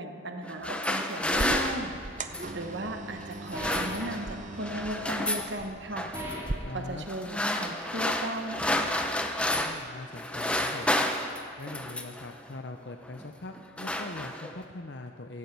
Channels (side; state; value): both; normal; correlation 0.46